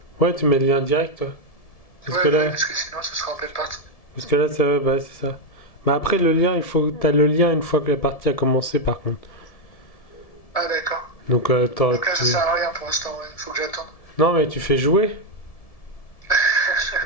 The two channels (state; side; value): late; right; 1.7 ms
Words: Ouais, tu mets le lien direct, toi. Parce que Ouais, ouais, là, parce que sinon, ce sera en pleine partie. ça, bah, c'est ça. Mais après, le lien, il faut, t'as le lien une fois que la partie a commencé, par contre. Ah, d'accord. Donc, Donc là, ça sert à rien pour l'instant, ouais. Faut que j'attende. non, mais tu fais jouer.